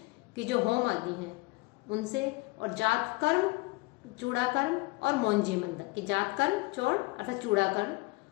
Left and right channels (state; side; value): quieter; right; 24.6 dB